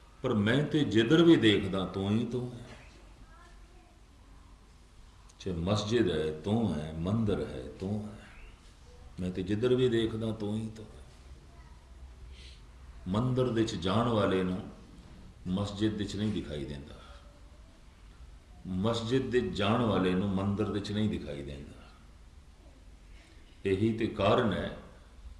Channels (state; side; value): identical; both; correlation 1.00